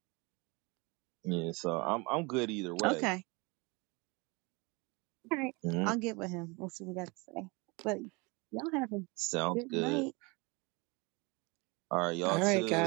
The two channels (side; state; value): left; quieter; 27.6 dB